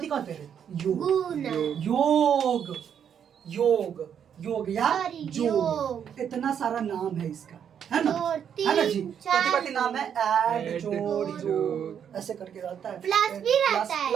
कहते हैं? योग। गुना योग योग योग या Sorry, जोग। योग। इतना सारा नाम है इसका, है ना? दो, है ना जी? तीन, कथी चार। कथी नाम है? ऐड, ऐड, जोड़, जोड़। योग, ऐसे करके रहता है। प्लस भी रहता है।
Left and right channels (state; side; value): quieter; left; 8.4 dB